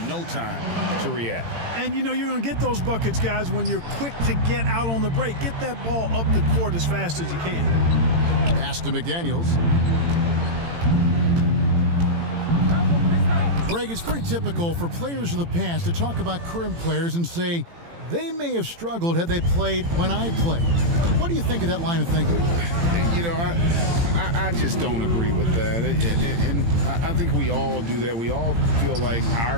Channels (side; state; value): left; late; 18 ms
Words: no time to react. And you know you're going to get those buckets, guys, when you're quick to get out on the break. Get that ball up the court as fast as you can. Pass to McDaniels. Greg, it's pretty typical for players of the past to talk about current players and say they may have struggled had they played when I played. What do you think of that line of thinking? You know, I just don't agree with that. And I think we all do that. We all feel like